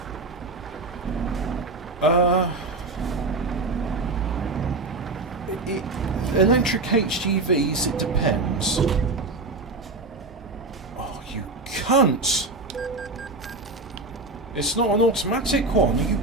point. Electric HGVs, it depends. Cunt! It's not an automatic one, you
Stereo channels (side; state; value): left; quieter; 3.3 dB